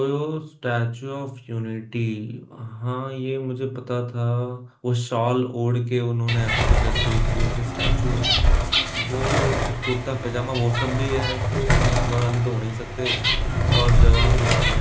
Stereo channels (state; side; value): identical; both; correlation 1.00